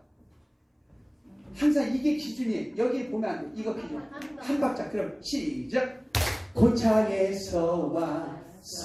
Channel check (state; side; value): identical; both; correlation 1.00